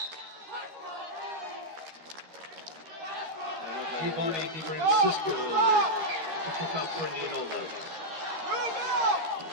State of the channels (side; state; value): left; late; 13 ms